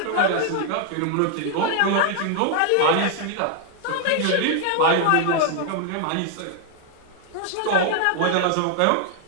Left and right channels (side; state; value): both; different; correlation 0.00